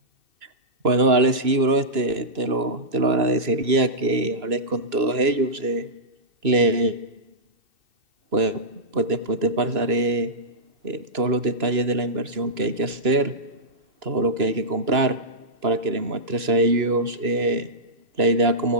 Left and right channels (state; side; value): late; left; 2.9 ms